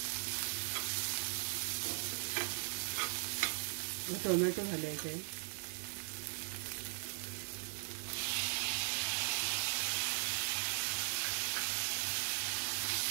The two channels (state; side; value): silent; left; 52 dB below the other